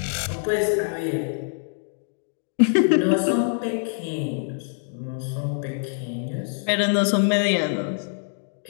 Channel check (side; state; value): right; silent; digital silence